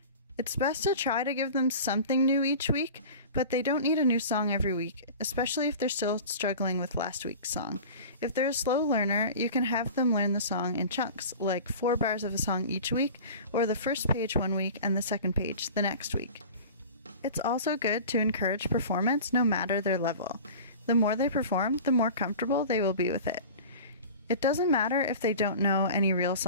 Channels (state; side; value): inverted; both; correlation -0.37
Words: It's best to try to give them something new each week, but they don't need a new song every week, especially if they're still struggling with last week's song. If they're a slow learner, you can have them learn the song in chunks, like 4 bars of a song each week, or the first page one week and the second page the next week. It's also good to encourage performance no matter their level. The more they perform, the more comfortable they will be with it. It doesn't matter if they don't know any real